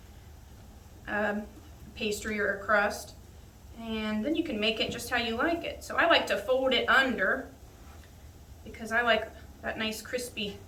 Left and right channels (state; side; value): identical; both; correlation 1.00